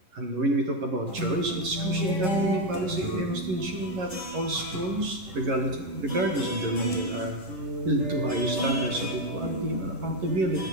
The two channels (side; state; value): left; late; 11 ms